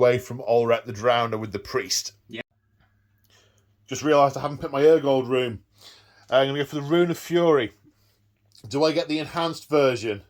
from Ulrek the Drowner with the Priest. Yeah. Just realised I haven't picked my Urgold rune. I'm going to go for the Rune of Fury. Do I get the enhanced version?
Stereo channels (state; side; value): identical; both; correlation 1.00